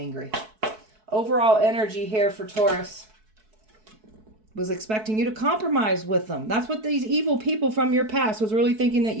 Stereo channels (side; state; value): left; late; 4.6 ms